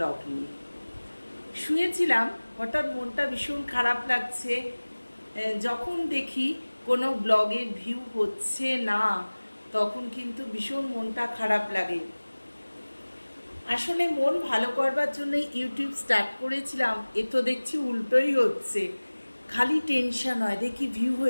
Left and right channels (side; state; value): both; inverted; correlation -1.00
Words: নিয়ে। শুয়েছিলাম, হঠাৎ মনটা ভীষণ খারাপ লাগছে। যখন দেখি কোনো ব্লগের ভিউ হচ্ছে না, তখন কিন্তু ভীষণ মনটা খারাপ লাগে। আসলে মন ভালো করবার জন্য ইউটিউব স্টার্ট করেছিলাম, এ তো দেখছি উল্টোই হচ্ছে। খালি টেনশন হয়, দেখি ভিউ